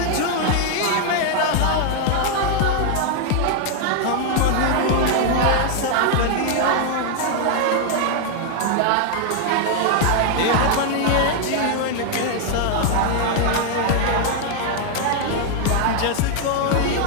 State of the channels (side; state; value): both; different; correlation 0.00